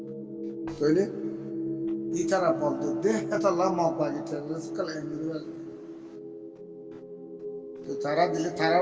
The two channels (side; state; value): both; identical; correlation 1.00